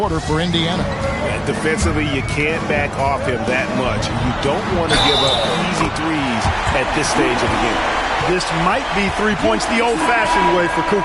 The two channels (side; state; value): both; identical; correlation 1.00